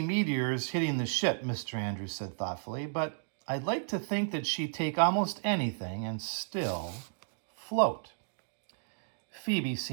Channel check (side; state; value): left; silent; digital silence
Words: meteors hitting the ship, Mr. Andrews said thoughtfully, but I'd like to think that she'd take almost anything and still float. Phoebe